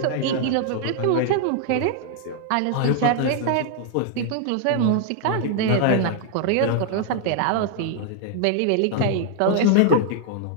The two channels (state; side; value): different; both; correlation 0.00